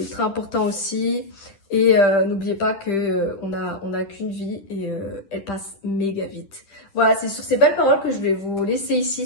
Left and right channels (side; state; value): right; late; 10 ms